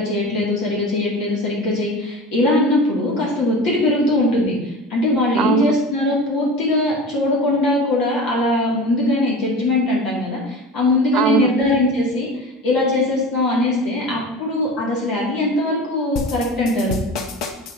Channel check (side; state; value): both; normal; correlation 0.34